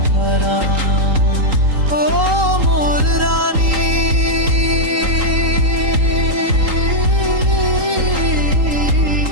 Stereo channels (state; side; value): late; left; 3.8 ms